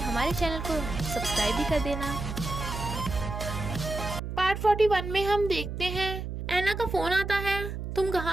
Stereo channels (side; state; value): right; noise; hum, 6 dB below the sound